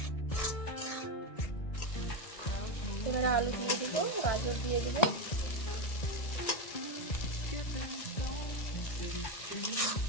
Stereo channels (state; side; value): late; right; 1.6 ms